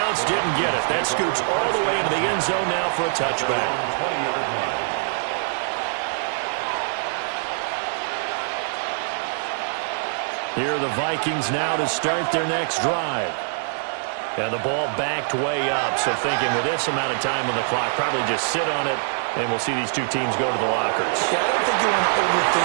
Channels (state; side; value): silent; left; digital silence